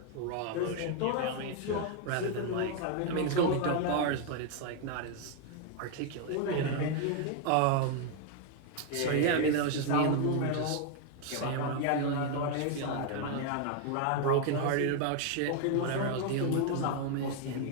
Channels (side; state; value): both; different; correlation 0.00